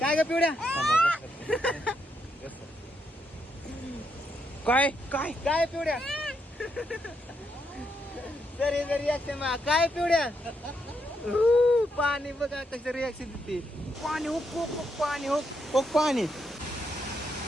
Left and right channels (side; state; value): both; normal; correlation 0.79